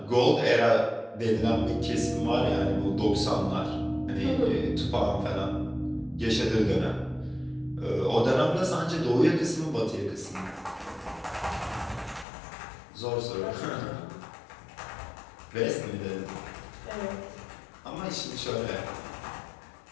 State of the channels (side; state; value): right; drops out; at 12.2 s